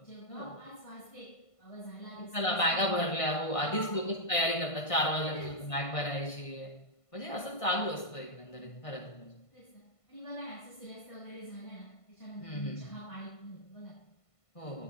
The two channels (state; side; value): late; right; 1.5 ms